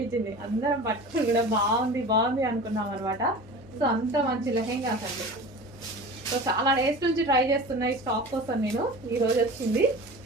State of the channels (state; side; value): normal; both; correlation 0.36